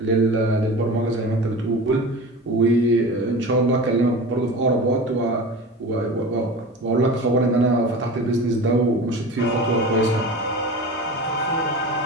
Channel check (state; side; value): normal; both; correlation 0.33